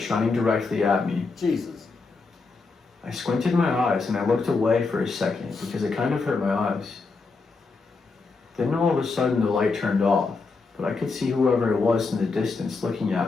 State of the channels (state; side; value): quieter; right; 4.2 dB